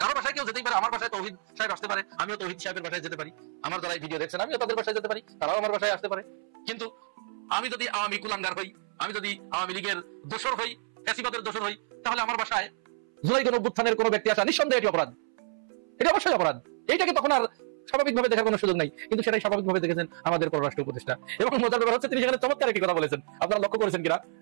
বাসায় কেউ যেতেই পারে। আমার বাসায় তৌহিদ সাহেব আসতে পারে, আমিও তৌহিদ সাহেবের বাসায় যেতে পারি। আমার যারা ভিডিও দেখছেন আমিও তাদের বাসায় যেতে পারি, তারাও আমার বাসায় আসতে পারে। কিন্তু আমি যদি আওয়ামী কুলাঙ্গার হই, আমি যদি আওয়ামী লীগের দোসর হই, ফ্যাসিবাদের দোসর হই, তাহলে আমার বাসায় জুলাই গণঅভ্যুত্থানের কোনো ব্যক্তি আসা নিঃসন্দেহে এটি অপরাধ, এটা অবশ্যই অপরাধ। এইটাকে তখন আর স্বাভাবিকভাবে দেখার কোনো সুযোগ নাই, কিন্তু সেটাই স্বাভাবিকভাবে দেখেছেন আমাদের পররাষ্ট্র উপদেষ্টা। এবং মজার ব্যাপার হচ্ছে তিনি সেখানে চমৎকার একটি কথা বলেছেন, আপনারা লক্ষ্য করেছেন কিনা।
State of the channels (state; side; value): silent; left; 59 dB below the other